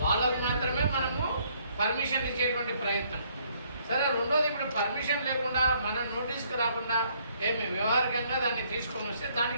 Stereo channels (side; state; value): both; inverted; correlation -0.66